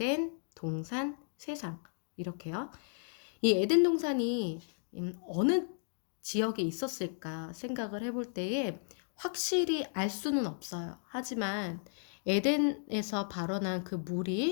동산, 세상. 이렇게요. 이 에덴 동산이 어느 지역에 있었을까 생각을 해볼 때에 확실히 알 수는 없어요. 하지만 에덴에서 발원한 그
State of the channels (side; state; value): right; silent; digital silence